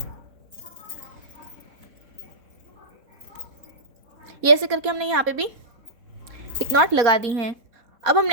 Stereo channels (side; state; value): left; late; 4.2 ms